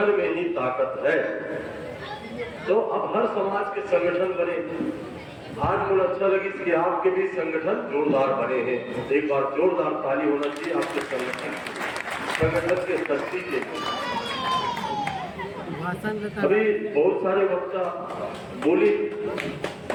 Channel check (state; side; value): identical; both; correlation 1.00